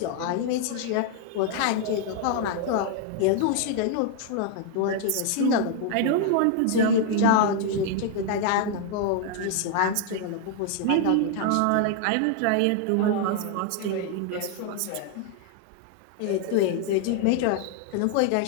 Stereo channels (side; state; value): both; different; correlation 0.00